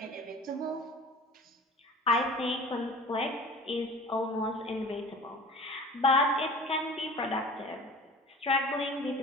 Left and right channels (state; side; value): normal; both; correlation 0.41